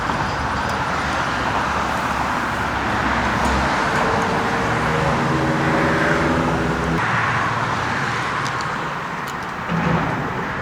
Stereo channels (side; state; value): both; identical; correlation 1.00